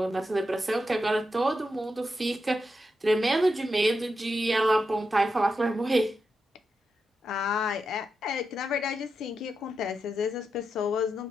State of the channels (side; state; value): both; normal; correlation 0.87